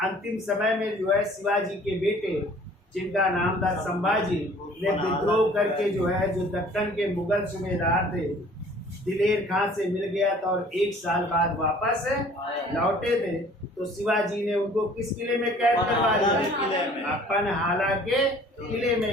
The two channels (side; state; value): both; normal; correlation 0.52